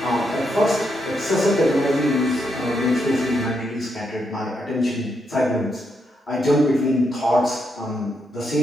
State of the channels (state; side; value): normal; both; correlation 0.80